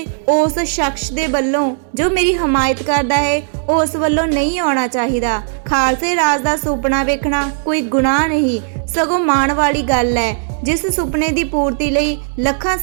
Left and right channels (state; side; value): silent; left; digital silence